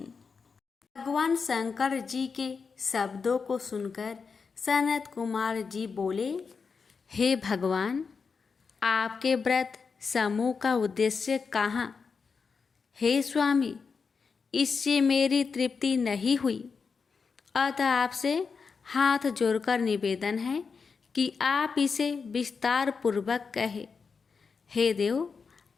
भगवान शंकर जी के शब्दों को सुनकर सनत कुमार जी बोले, हे भगवान, आपके व्रत समूह का उद्देश्य कहाँ? हे स्वामी, इससे मेरी तृप्ति नहीं हुई, अतः आपसे हाथ जोड़कर निवेदन है कि आप इसे विस्तार पूर्वक कहे। हे देव,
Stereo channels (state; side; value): quieter; right; 5.3 dB